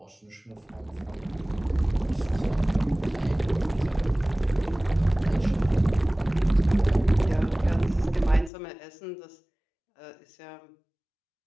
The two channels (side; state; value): right; drops out; at 8.5 s